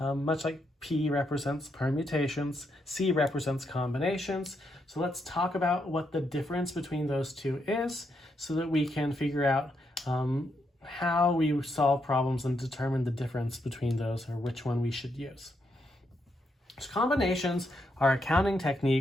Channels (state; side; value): normal; both; correlation 0.79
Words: like P represents permutations, C represents combinations. So let's talk about what the difference between those two is so that we can figure out how we solve problems and determine the difference between those or which one we should use. So combinations are a counting